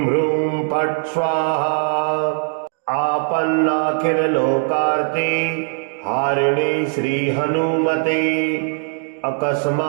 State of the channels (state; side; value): silent; left; 59 dB below the other